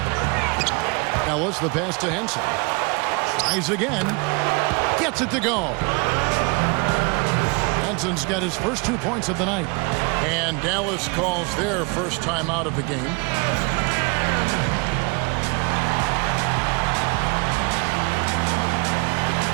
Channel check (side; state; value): left; quieter; 30.3 dB